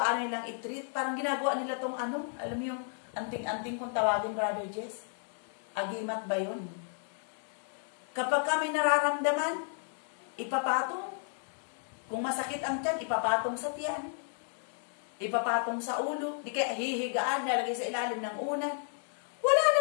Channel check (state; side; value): silent; right; 56 dB below the other